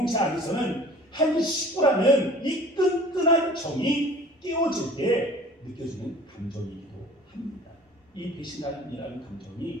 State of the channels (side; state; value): both; normal; correlation 0.46